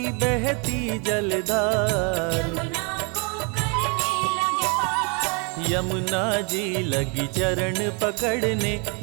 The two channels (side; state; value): left; quieter; 34.7 dB